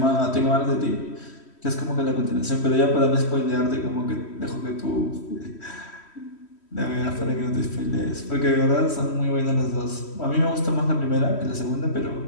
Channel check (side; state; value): right; late; 3.1 ms